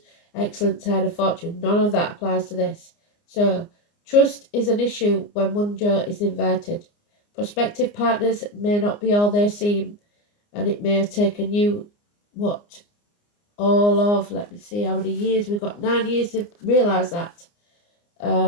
excellent turn of fortune. None of that applies to this. So trust is an issue when one Joe is inverted. Prospective partners may not be all they seem, and it may have taken you all of, let me see how many years, we've got 9 years to realise that.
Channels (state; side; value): late; right; 29 ms